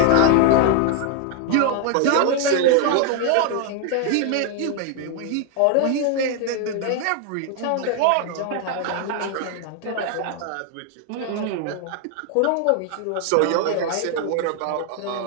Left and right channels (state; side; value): different; both; correlation 0.01